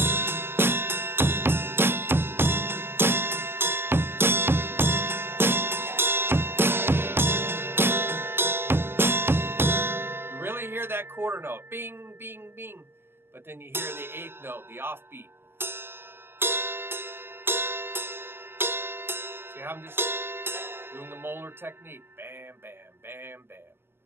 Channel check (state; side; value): late; left; 0.11 ms